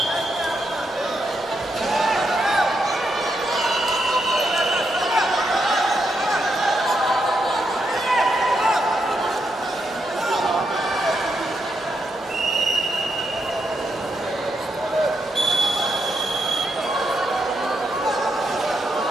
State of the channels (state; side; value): normal; both; correlation 0.81